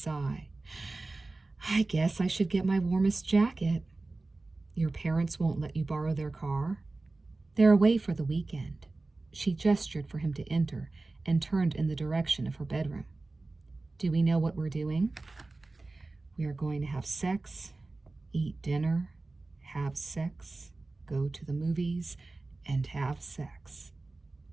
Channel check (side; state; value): left; quieter; 3.3 dB